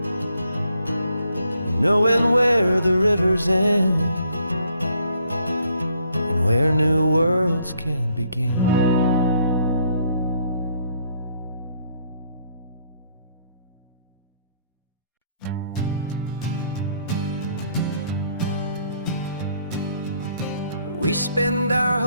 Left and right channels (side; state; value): both; inverted; correlation -0.69